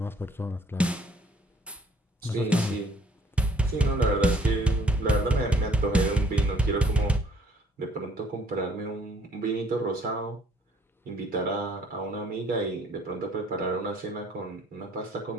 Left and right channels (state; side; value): normal; both; correlation 0.61